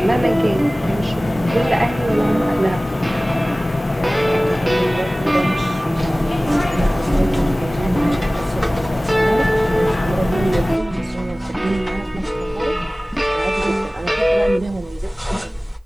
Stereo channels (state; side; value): normal; both; correlation 0.98